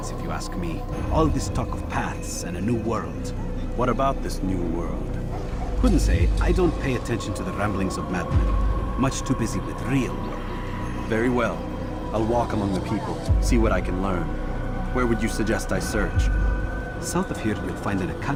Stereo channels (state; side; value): identical; both; correlation 1.00